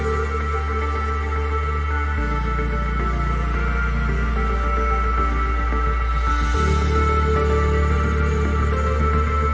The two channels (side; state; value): both; identical; correlation 1.00